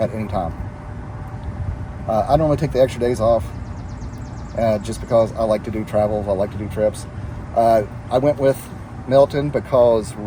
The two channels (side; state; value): both; identical; correlation 1.00